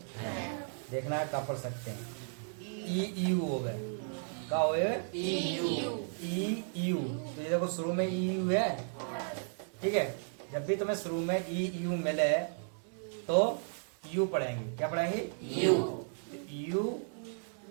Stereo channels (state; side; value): silent; left; 55 dB below the other